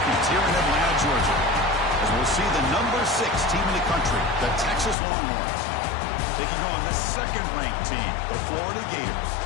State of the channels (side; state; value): right; drops out; at 5.0 s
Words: here in Atlanta, Georgia, as we'll see the number 6 team in the country, the Texas Longhorns, taking on the second-ranked team, the Florida Gators.